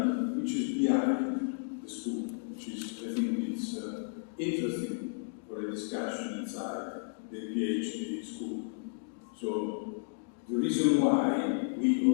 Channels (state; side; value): silent; right; digital silence